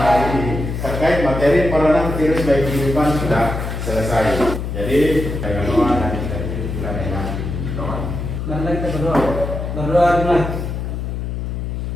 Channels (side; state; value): left; noise; hum, 4 dB below the sound